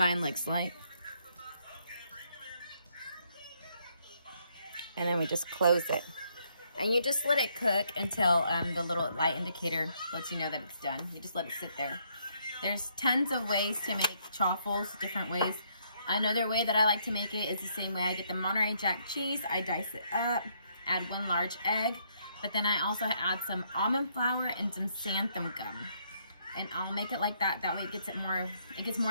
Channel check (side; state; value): both; inverted; correlation -0.71